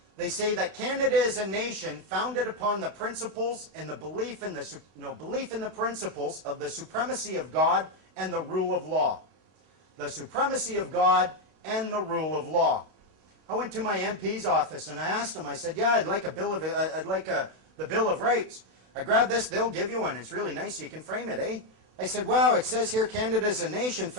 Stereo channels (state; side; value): late; left; 32 ms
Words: they say that Canada is a nation founded upon the principles and the belief in the principles of the supremacy of God and the rule of law. The supremacy of God and the rule of law. I went to my MP's office and I asked him, I said, yeah, I'd like the Bill of Rights. I grabbed this, they'll give you one. It's really nice, you can frame it, eh? I said, wow, it says here Canada is a nation